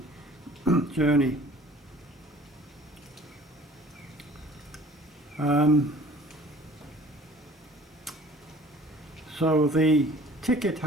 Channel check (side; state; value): both; normal; correlation 0.50